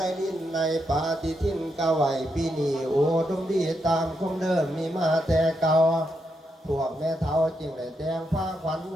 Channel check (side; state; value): both; normal; correlation 0.82